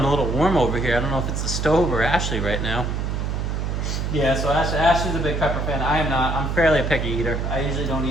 a little warm over here. I don't know if it's the stove or Ashley right now. Yeah, so Ashley's a big pepper fan. I am not. I'm fairly a picky eater. I usually don't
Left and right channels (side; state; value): right; noise; hum, 1 dB below the sound